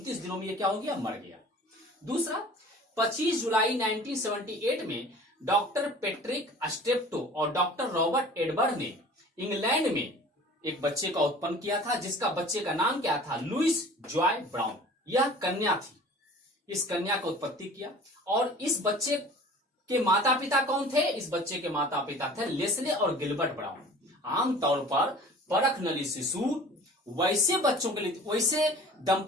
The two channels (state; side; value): normal; both; correlation 0.44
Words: दिनों में यह क्या हो गया, मर गया। दूसरा, 25 जुलाई 1978 में डॉक्टर पेट्रिक स्टेप्टो और डॉक्टर रॉबर्ट एडवर्ड ने इंग्लैंड में एक बच्चे का उत्पन्न किया था, जिसका बच्चे का नाम क्या था, लुइस जॉय ब्राउन। यह कन्या थी। इस कन्या का उत्पत्ति किया, और इस बच्चे के माता पिता कौन थे? इस बच्चे के माता पिता थे लेस्ले और गिलबर्ट ब्राउन। आमतौर पर परख नली शिशु वैसे बच्चों के लिए, वैसे